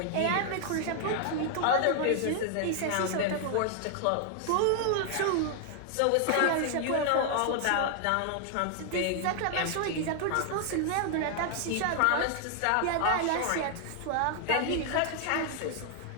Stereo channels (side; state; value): both; different; correlation 0.00